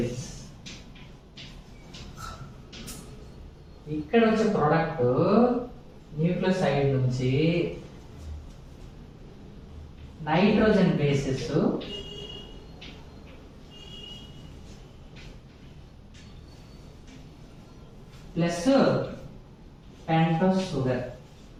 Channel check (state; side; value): identical; both; correlation 1.00